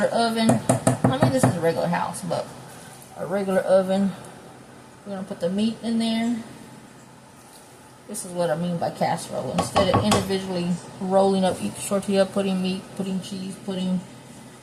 oven. I mean, this is a regular house, but a regular oven. We're going to put the meat in there. This is what I mean by casserole. Instead of individually rolling up each tortilla, putting meat, putting cheese,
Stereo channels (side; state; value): both; identical; correlation 1.00